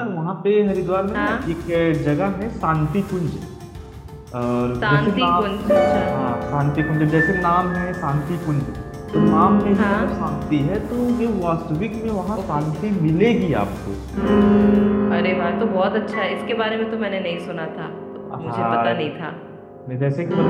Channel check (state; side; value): identical; both; correlation 1.00